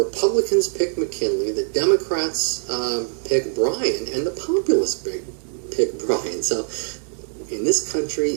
pick McKinley, the Democrats pick Bryan, and the Populists pick Bryan. So in this country,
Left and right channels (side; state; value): left; silent; 64 dB below the other